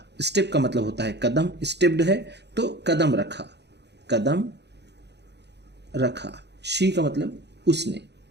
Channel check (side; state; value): left; late; 0.50 ms